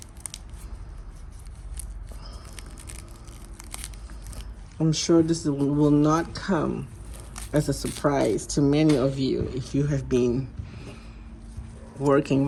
I'm sure this will not come as a surprise to many of you if you have been working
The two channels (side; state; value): both; identical; correlation 1.00